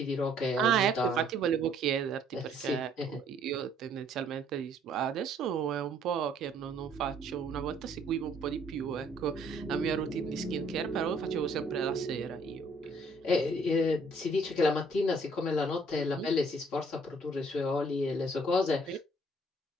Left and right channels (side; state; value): both; normal; correlation 0.62